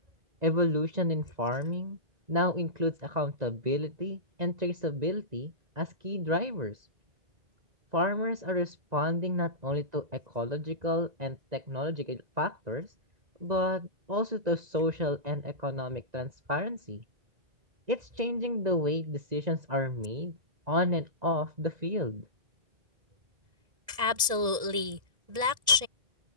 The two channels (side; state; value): left; late; 1.7 ms